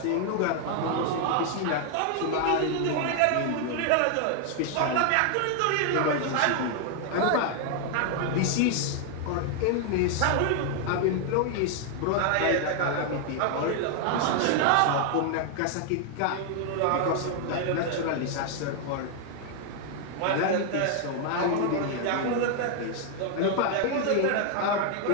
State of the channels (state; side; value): different; both; correlation 0.00